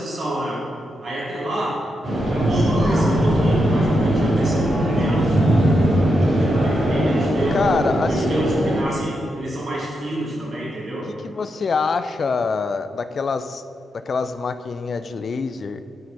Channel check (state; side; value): normal; both; correlation 0.84